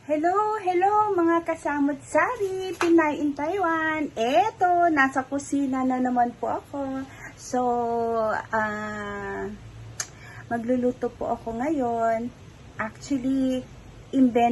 Hello mga kasamot-sari, Pinay in Taiwan. Eto, nasa kusina na naman po ako. So, magluluto po ako ngayon. Actually,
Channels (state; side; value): identical; both; correlation 1.00